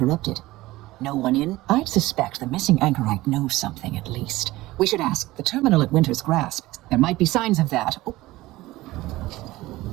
No one in? I'd suspect the missing anchorite knows something, at least. We should ask. The terminal at Winter's Grasp. There might be signs of that. Oh.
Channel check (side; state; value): left; quieter; 18.2 dB